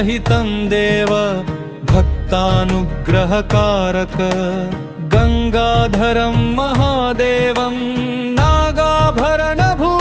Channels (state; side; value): identical; both; correlation 1.00